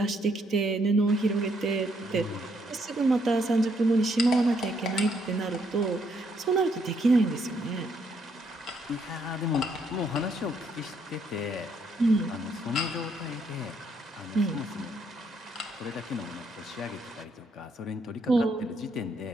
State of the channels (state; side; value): normal; both; correlation 0.72